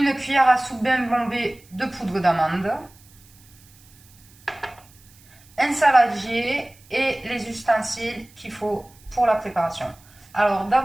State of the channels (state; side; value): noise; right; hiss, 27 dB below the sound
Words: cuillère à soupe bien bombée de poudre d'amande, un saladier et les ustensiles qu'il faut pour la préparation. Alors